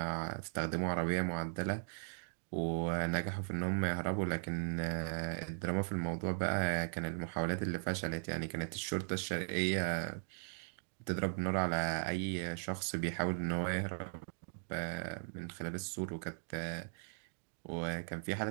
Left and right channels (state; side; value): silent; left; digital silence